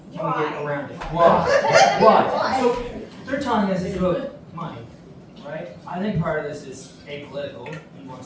can we get around it? Why? Why? So, they're telling us it's about money, right? I think part of this is apolitical. He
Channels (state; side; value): identical; both; correlation 1.00